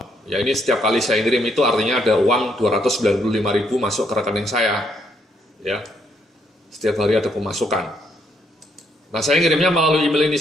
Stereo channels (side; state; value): both; normal; correlation 0.73